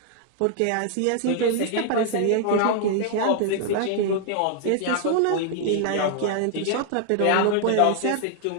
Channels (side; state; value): both; different; correlation 0.00